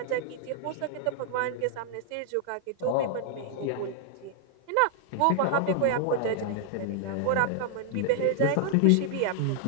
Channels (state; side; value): different; both; correlation -0.01